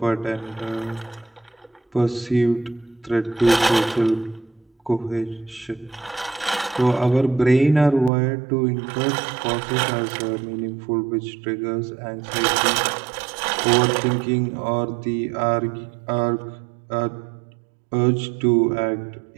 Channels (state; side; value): drops out; left; at 8.1 s